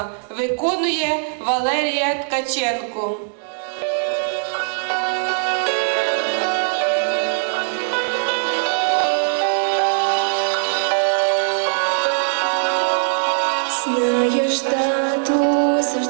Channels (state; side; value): silent; left; 65 dB below the other